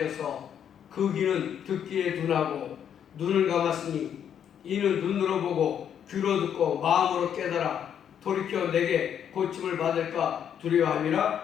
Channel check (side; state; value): right; quieter; 8.9 dB